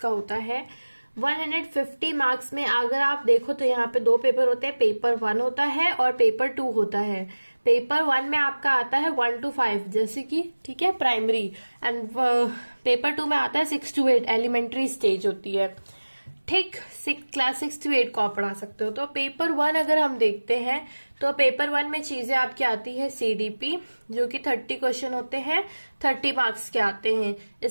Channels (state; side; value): inverted; both; correlation -1.00